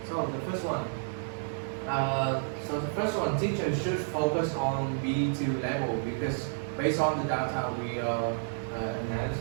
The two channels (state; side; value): silent; left; digital silence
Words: So the first one, teachers should focus on B2 level because based on the data we